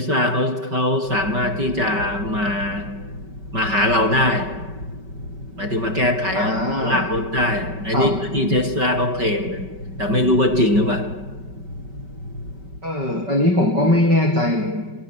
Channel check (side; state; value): left; late; 5.2 ms